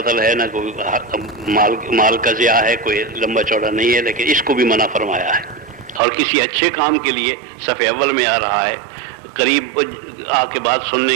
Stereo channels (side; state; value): left; drops out; at 6.0 s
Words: ہے، نہ کوئی مال کا ضیاع ہے، کوئی لمبا چوڑا نہیں ہے، لیکن اس کو بھی منع فرمایا ہے۔ اور کسی اچھے کام کے لیے صف اول میں آ رہا ہے، قریب آ کے بات